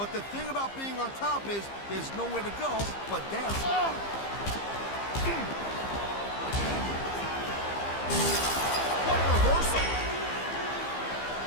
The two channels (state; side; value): late; right; 15 ms